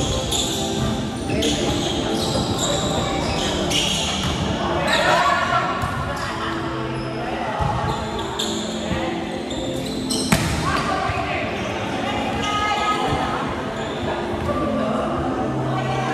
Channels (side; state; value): both; identical; correlation 1.00